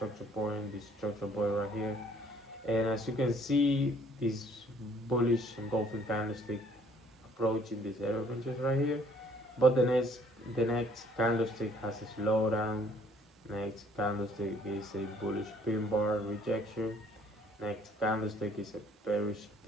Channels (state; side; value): normal; both; correlation 0.61